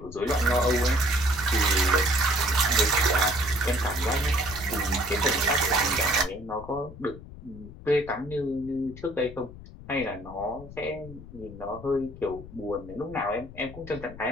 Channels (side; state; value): left; noise; rumble, 15 dB below the sound